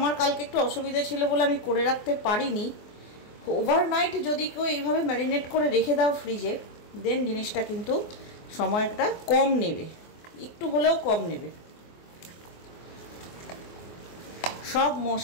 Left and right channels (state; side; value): late; right; 24 ms